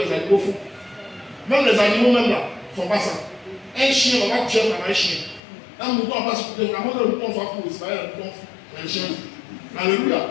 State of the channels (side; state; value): right; drops out; at 5.4 s